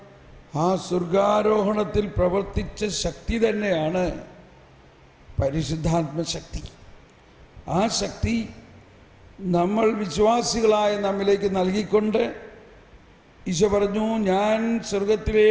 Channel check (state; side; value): identical; both; correlation 1.00